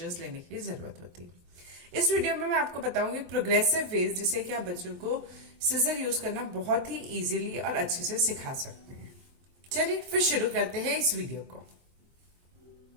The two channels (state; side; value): late; left; 23 ms